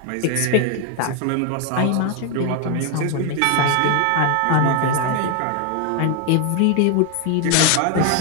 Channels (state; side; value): different; both; correlation 0.01